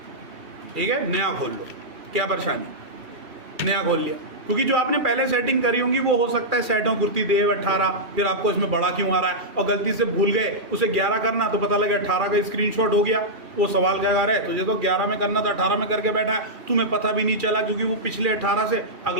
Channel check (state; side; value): late; left; 2.4 ms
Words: ठीक है, नया खोल लो, क्या परेशानी, नया खोल लिया। क्योंकि जो आपने पहले सेटिंग करी होंगी वो हो सकता है सेट हो कुर्ती देव 18, फिर आपको इसमें बड़ा क्यों आ रहा है, और गलती से भूल गए उसे 11 करना, तो पता लगा 18 का स्क्रीनशॉट हो गया। वो सवाल क्या कर रहा है, तुझे तो 11 में करना था, 18 में करके बैठा है, तुम्हें पता भी नहीं चला क्योंकि वो पिछले 18 से